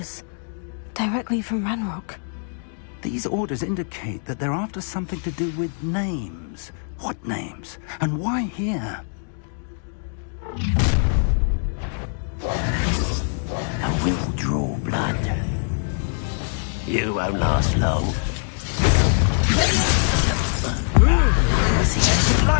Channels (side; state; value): right; silent; 61 dB below the other